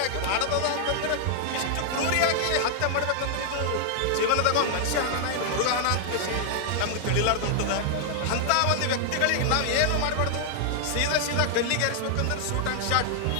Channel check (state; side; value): different; both; correlation 0.00